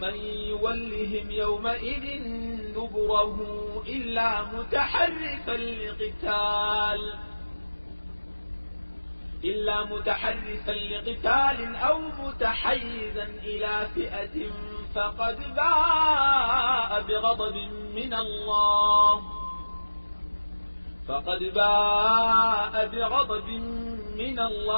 يولهم يومئذ دبره إلا متحرفا لقتال أو متحيزا إلى فئة فقد باء بغضب من الله من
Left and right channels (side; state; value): both; inverted; correlation -1.00